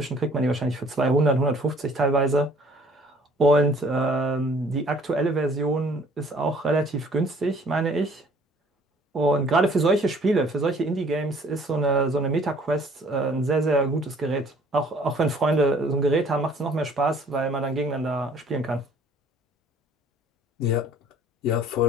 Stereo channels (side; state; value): both; normal; correlation 0.56